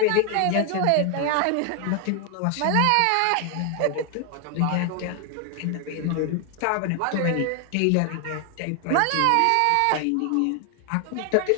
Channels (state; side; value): different; both; correlation 0.01